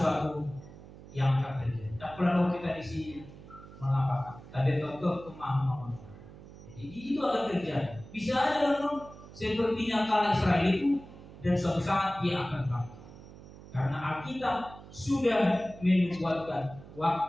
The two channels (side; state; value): right; noise; hum, 17 dB below the sound